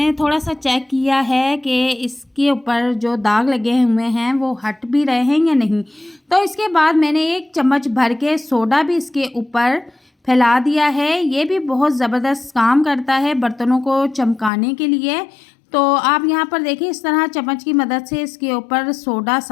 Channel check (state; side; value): drops out; right; at 14.5 s